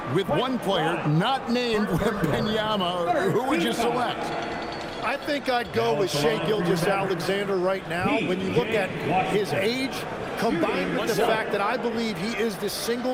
with one player not named Wembanyama, who would you select? I think I'd go with Shai Gilgeous-Alexander right now. When you look at his age, combined with the fact that I believe he is the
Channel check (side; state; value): both; identical; correlation 1.00